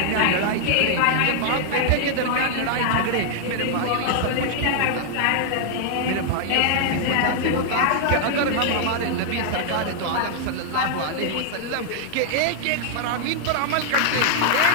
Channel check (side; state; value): both; different; correlation 0.00